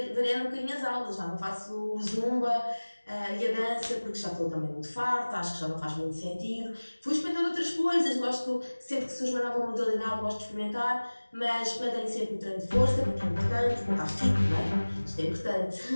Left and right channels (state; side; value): inverted; both; correlation -1.00